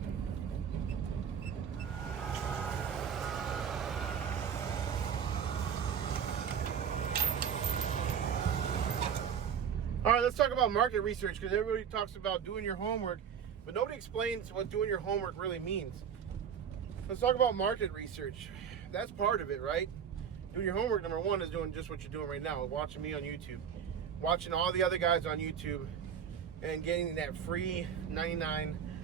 All right, let's talk about market research, because everybody talks about doing your homework, but nobody explains what doing your homework really means. Let's talk about market research. That's part of it, right? Doing your homework, number one, is doing just what you're doing right now, watching me on YouTube, watching all the other guys on YouTube, and getting that free 99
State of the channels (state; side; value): quieter; left; 7.9 dB